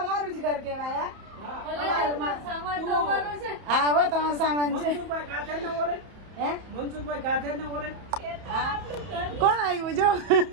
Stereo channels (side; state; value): left; late; 31 ms